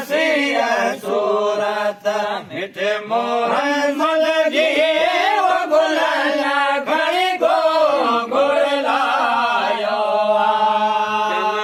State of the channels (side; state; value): both; identical; correlation 1.00